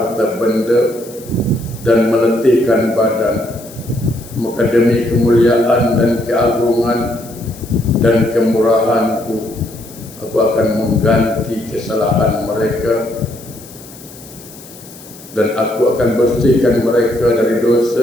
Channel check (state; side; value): noise; left; hiss, 19 dB below the sound